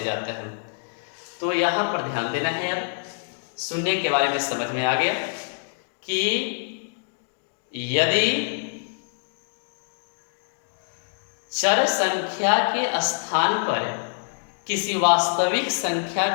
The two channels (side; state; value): right; silent; digital silence